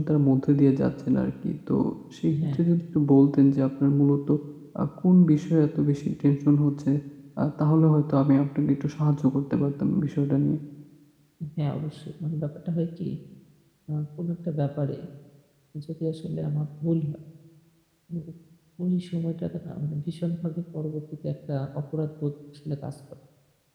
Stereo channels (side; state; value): both; identical; correlation 1.00